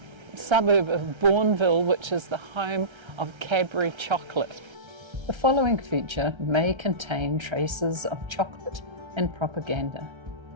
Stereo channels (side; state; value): left; late; 1.3 ms